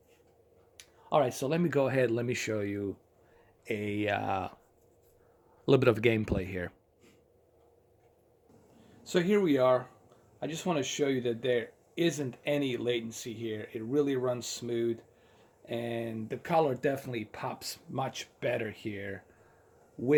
All right, so let me go ahead. Let me show you a little bit of gameplay here. So here we are. I just want to show you that there isn't any latency here. It really runs smooth, and the color definitely pops much better here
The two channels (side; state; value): both; identical; correlation 1.00